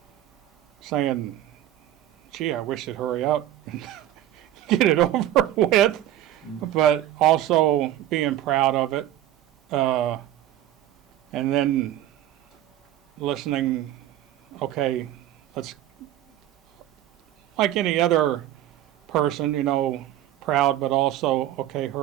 saying, gee, I wish it'd hurry up and get it over with, but also being proud of it. And then listening, okay, let's, like any other person, proud, but also, okay,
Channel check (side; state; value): left; quieter; 12.9 dB